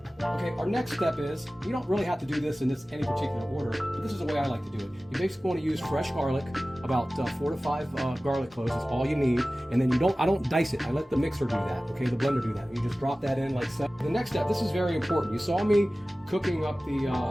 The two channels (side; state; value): both; normal; correlation 0.97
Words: Okay, our next step is, you don't really have to do this in any particular order, but this is the way I like to do it. You basically want to use fresh garlic, about 4 to 5 garlic cloves, that's all you need. And then I don't dice it, I let the mixer do that, okay, the blender do that. You just drop that in like so. The next step, this is very important. You saw me cooking up